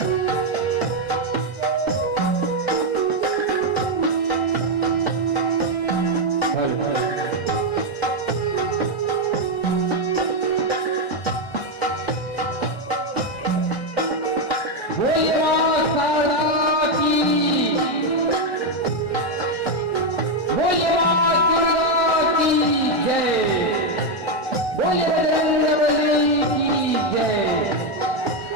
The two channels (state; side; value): late; right; 1.4 ms